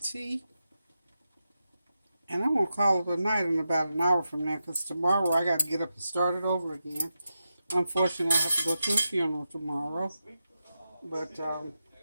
tea. And I'm going to call it a night in about an hour from now, because tomorrow I got to get up and start it over again. Unfortunately, I have to go to a funeral tomorrow. But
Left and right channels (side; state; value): both; inverted; correlation -0.89